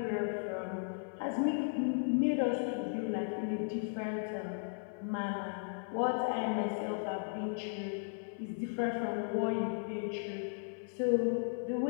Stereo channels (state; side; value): silent; right; 54 dB below the other